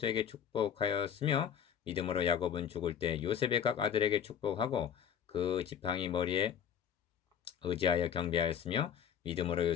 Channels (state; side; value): quieter; right; 8.4 dB